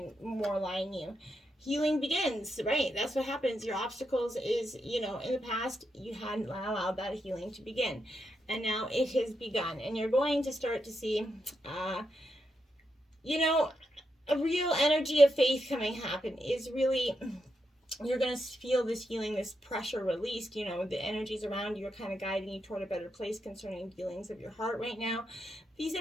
more align you. Healing begins, right? That's what happens. Your obstacles is, in the past, you hadn't allowed that healing to begin. And now it has begun. And you're going to start to see, a real energy of faith happen is really, you're going to feel this healing, this pressure released. The energies around you are kind of guiding you toward a better place concerning feelings of your heart right now. These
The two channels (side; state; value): both; normal; correlation 0.84